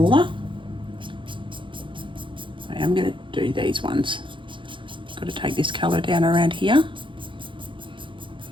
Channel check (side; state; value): left; late; 0.24 ms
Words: I am going to do these ones. Got to take this colour down around here.